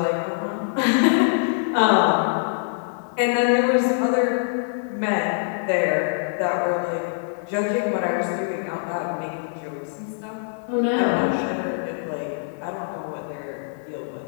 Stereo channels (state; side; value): silent; right; digital silence